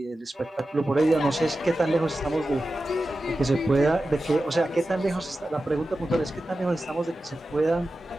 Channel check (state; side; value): normal; both; correlation 0.93